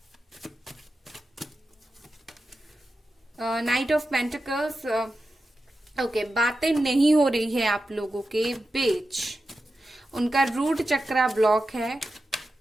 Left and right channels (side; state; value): both; normal; correlation 0.91